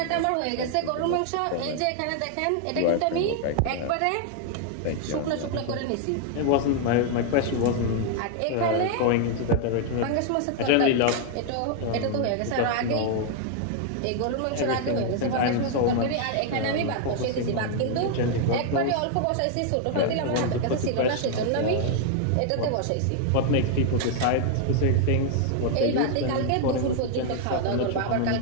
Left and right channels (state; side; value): different; both; correlation 0.00